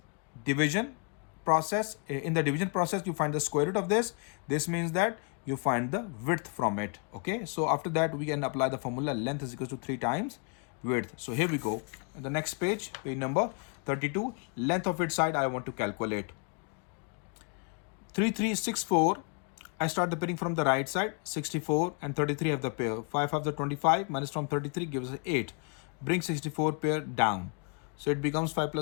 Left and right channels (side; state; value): right; quieter; 37.3 dB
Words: division process, in the division process, you find the square root of this. This means that you find the width from it. Okay. So after that, we can apply the formula length is equal to 3 times width. So here we go. On the next page, page number 32, length of its side I want to calculate. 3364. I start the pairing from the right side. 64 and 33 have the pair. 5 have the 25 minus from 33 gives us 8. Bring 64 pair down. So it becomes 5